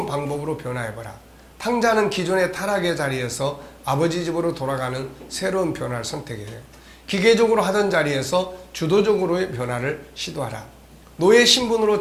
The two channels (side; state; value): both; identical; correlation 1.00